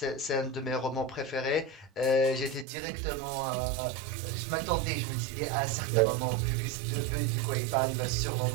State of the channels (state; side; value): drops out; left; at 2.7 s